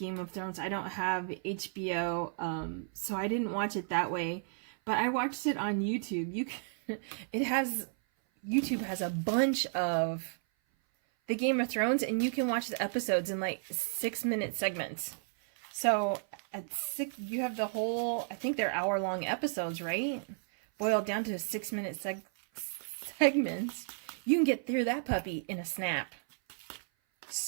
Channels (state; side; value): silent; left; 56 dB below the other